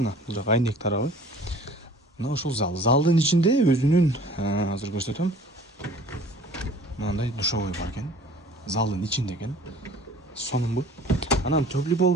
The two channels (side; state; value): both; normal; correlation 0.49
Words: Бул жак айнек тарабы. Мына ушул зал. Залдын ичинде өзүнүн, азыр көрсөтөм. Мындай душовой бар экен. Залдын ичинде экен. Сонунбу. Анан теплый пол